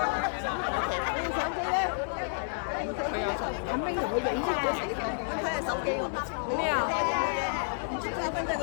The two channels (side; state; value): right; silent; 58 dB below the other